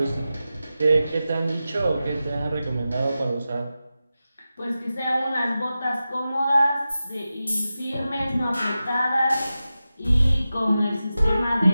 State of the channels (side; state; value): both; inverted; correlation -0.93